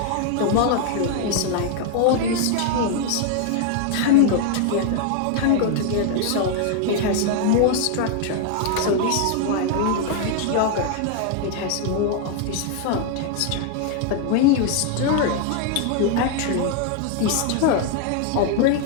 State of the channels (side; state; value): both; different; correlation 0.00